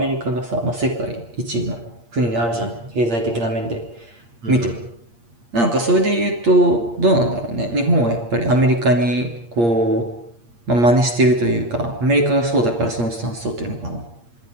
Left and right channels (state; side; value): late; left; 8.5 ms